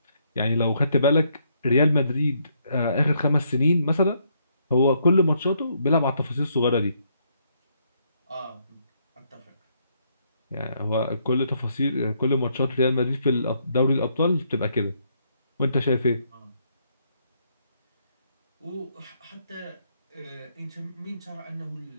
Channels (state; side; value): inverted; both; correlation -0.72